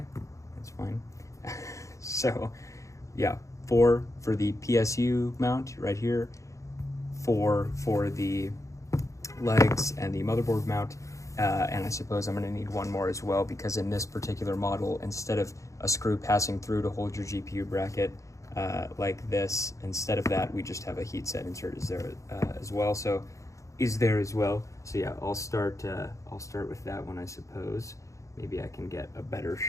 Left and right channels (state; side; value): late; right; 0.15 ms